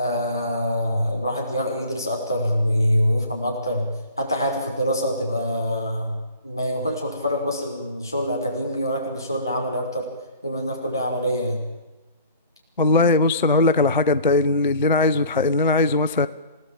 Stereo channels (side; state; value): both; inverted; correlation -0.47